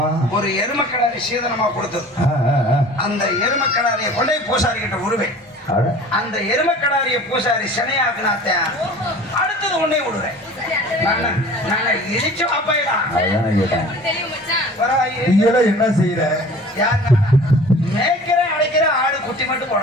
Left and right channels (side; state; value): both; normal; correlation 0.44